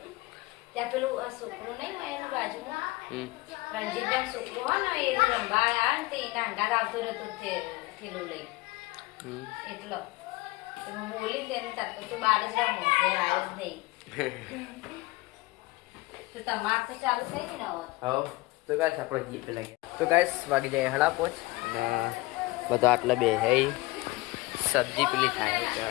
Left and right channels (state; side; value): quieter; right; 21.2 dB